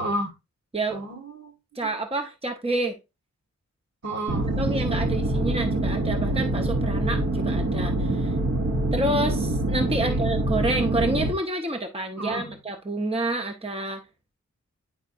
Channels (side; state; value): both; normal; correlation 0.56